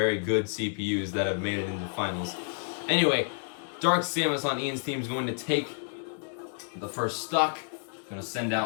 good CPUs that have made it into finals. Anyway, Dark Samus on Ian's team is going to take the first stock. Going to send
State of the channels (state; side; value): silent; right; 58 dB below the other